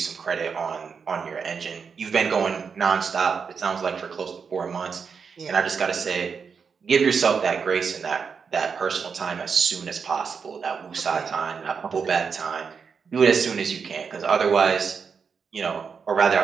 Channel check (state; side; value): quieter; left; 5.9 dB